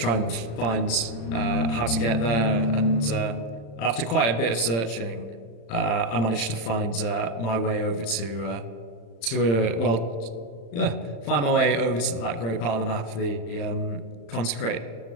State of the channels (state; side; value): late; right; 35 ms